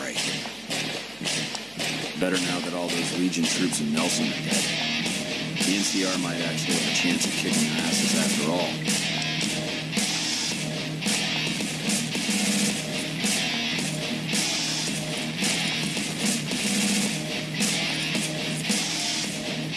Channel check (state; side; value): noise; left; hum, 27 dB below the sound